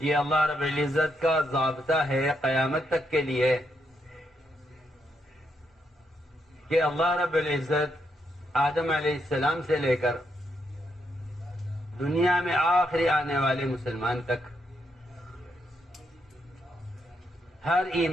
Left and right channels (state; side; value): normal; both; correlation 0.79